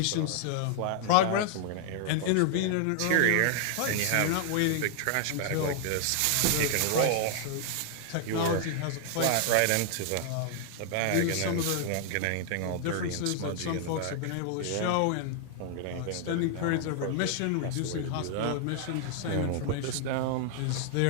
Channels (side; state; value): both; different; correlation 0.00